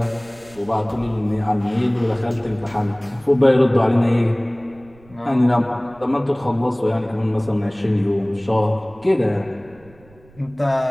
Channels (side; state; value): right; noise; rumble, 26 dB below the sound